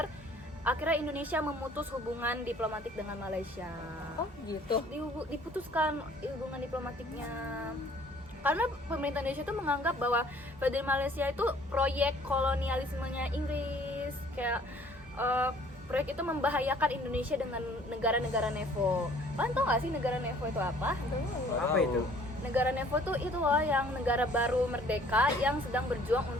akhirnya Indonesia memutus hubungan diplomatik dengan Malaysia. Oh gitu? Diputuskan hubungan diplomatiknya karena pemerintah Indonesia itu menganggap bahwa Federasi Malaysia itu proyek kolonialismenya Inggris, kayak proyek itu membahayakan Indonesia dengan negara-negara NEVO. Kalian tau gak sih negara NEVO itu apa? Apa itu? Negara NEVO itu loh yang negara baru merdeka yang sedang berjuang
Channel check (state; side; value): normal; both; correlation 0.55